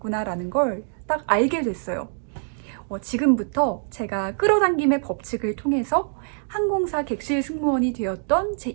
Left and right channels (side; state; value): left; silent; digital silence